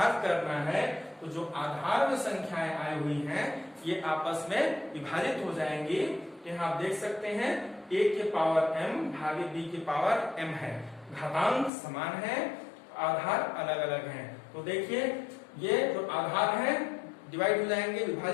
करना है तो जो आधार में संख्याएं आई हुई हैं ये आपस में विभाजित हो जाएंगी। यहाँ आप देख सकते हैं a के पावर m भागे b के पावर m है, घातांक समान है आधार अलग अलग हैं। तो देखिए ये जो आधार है डिवाइड हो जाएंगे,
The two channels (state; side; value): drops out; right; at 11.7 s